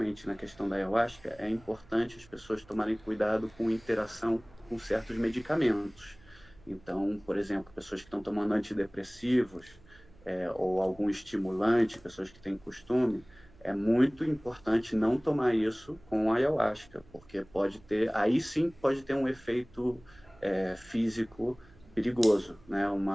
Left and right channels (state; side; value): noise; right; hum, 25 dB below the sound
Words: na questão da ayahuasca, é importante as pessoas tomarem cuidado com interação com certos medicamentos. Então, por exemplo, pessoas que estão tomando antidepressivos, ou algum estimulante, pessoas que têm costume, é muito importante não tomar isso com ayahuasca, porque aí sim pode ter um efeito físico perigoso, né?